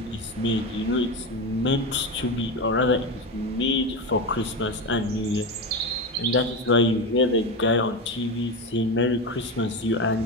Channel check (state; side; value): normal; both; correlation 0.18